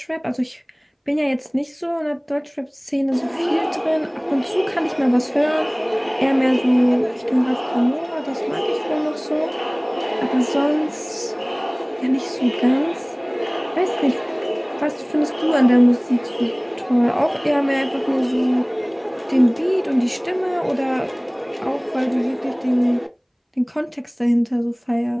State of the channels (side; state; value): both; identical; correlation 1.00